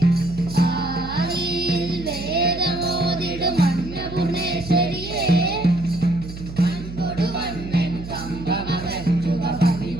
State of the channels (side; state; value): right; noise; hum, 11 dB below the sound